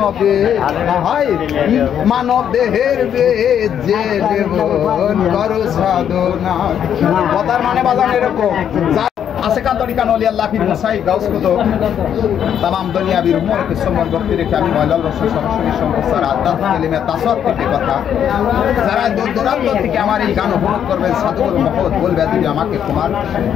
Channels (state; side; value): quieter; right; 9.1 dB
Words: হায় মানব দেহের বেদে নেব করো সাধনা কথার মানে বাজান এরকম Asekan tarikan oleh Allah fir Musaid Gaus Kutup tamam dunia bir umur ke সম্মান করতে রেখে আমি ময়লাল রসুল সরাসরি সম্প্রচার আদাত কেলিমে তাসাদ থেকে কথা যারা দূর দূরান্ত থেকে আমার এই গান উপভোগ করবেন সাধুগুরু মহৎ বলবে তুমি আমাকে তোমার